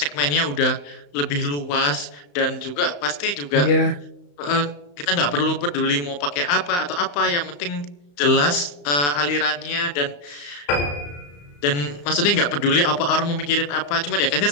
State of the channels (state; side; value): late; right; 35 ms